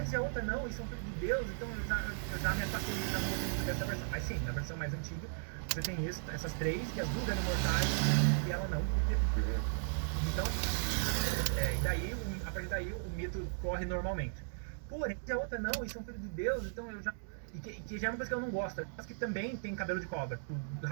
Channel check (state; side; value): silent; left; digital silence